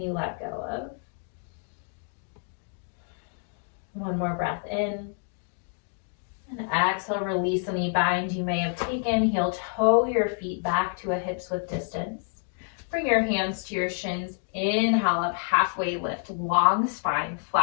you let go of? One more breath in. And exhale, release any bind you may have taken. Heel toe your feet back to a hips width distance. Bring your hands to your shins. Inhale up, halfway lift, long spine,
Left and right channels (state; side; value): silent; right; 59 dB below the other